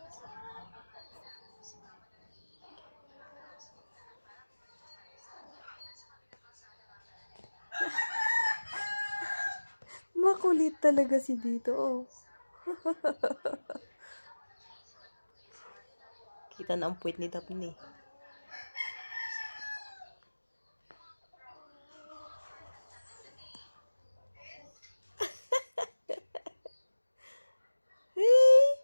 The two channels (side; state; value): both; inverted; correlation -1.00